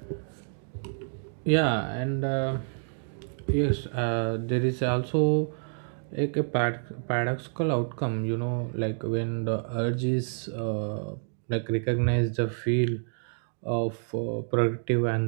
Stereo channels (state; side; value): silent; left; digital silence